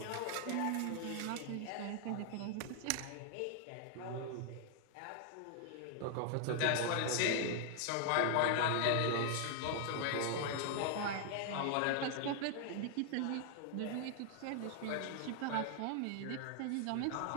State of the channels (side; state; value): both; different; correlation 0.00